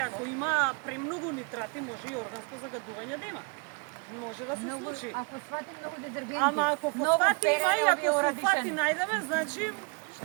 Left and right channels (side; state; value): left; quieter; 35.0 dB